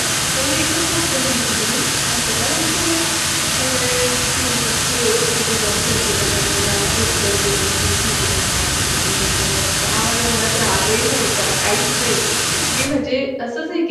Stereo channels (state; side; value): identical; both; correlation 1.00